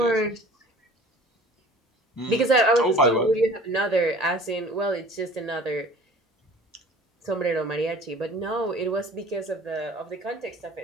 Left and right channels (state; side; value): normal; both; correlation 0.46